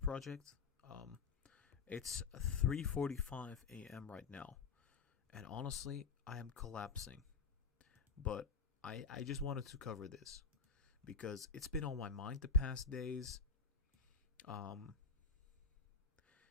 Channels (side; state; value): right; quieter; 5.4 dB